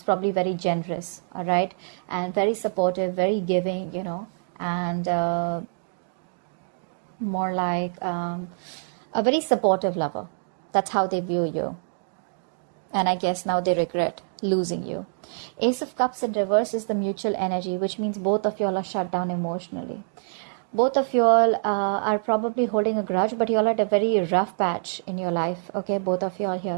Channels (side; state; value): left; silent; digital silence